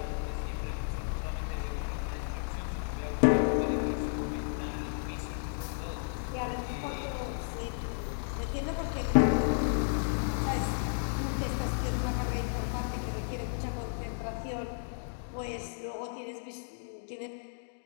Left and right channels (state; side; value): silent; right; digital silence